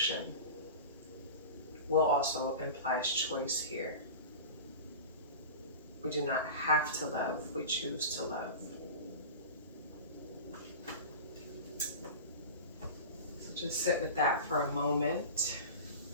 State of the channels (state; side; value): inverted; both; correlation -0.31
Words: Will also implies choice here. We do not have to love, we choose to love. So just sit with that for a moment.